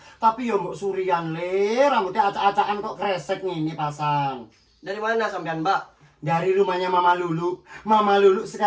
Tapi yo mbok surian le, rambutnya acak-acakan kok kresek ngene pasang. Dari mana sampean, Mbak? Dari rumahnya Mama Lulu. Mama Lulu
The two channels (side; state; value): both; identical; correlation 1.00